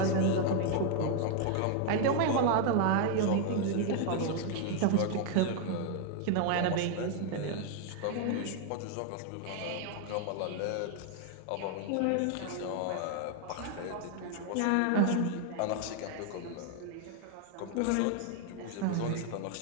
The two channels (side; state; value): both; different; correlation 0.00